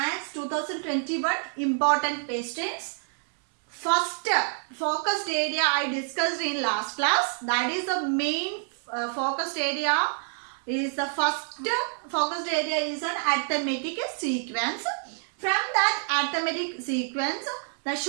2021 important questions. First focused area I discussed in last class, that is the main focused area. Is the first focused area is an arithmetic sequence. From that arithmetic sequence, the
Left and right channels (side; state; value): left; silent; 59 dB below the other